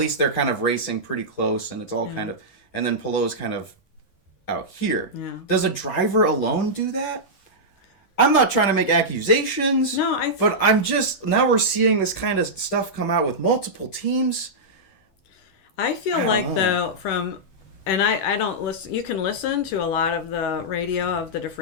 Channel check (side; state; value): right; late; 10 ms